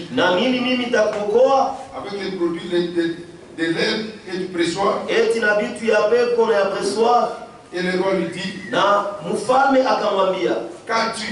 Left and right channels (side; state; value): both; identical; correlation 1.00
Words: Na mimi nitakuokoa? Avec les produits de l'herbe et du pressoir. Eti na bitu ya pepo na ya pressoir. Et le roi lui dit, na mfalme akamwambia,